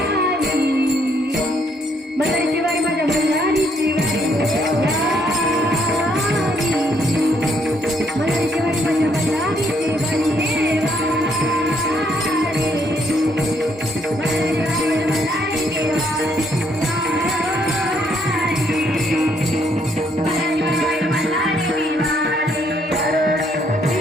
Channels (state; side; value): normal; both; correlation 0.71